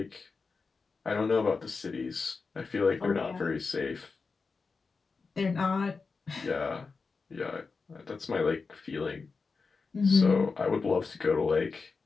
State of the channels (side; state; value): right; quieter; 4.6 dB